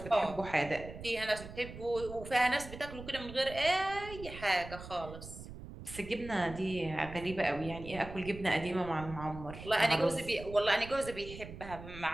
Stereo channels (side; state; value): right; noise; rumble, 13 dB below the sound